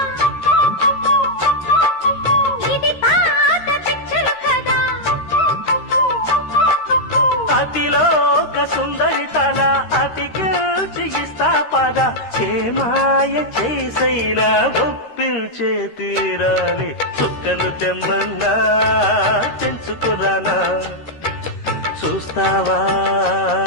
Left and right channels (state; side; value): late; right; 13 ms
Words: ఇది పాత పిక్చర్ కదా. అతిలోక సుందరి తల అతికిస్తా పద. చేమాయ చేసైనా ఒప్పించే తీరాలి. చుక్కలు తెమ్మన్నా తెంచుకురానా, చూస్తావా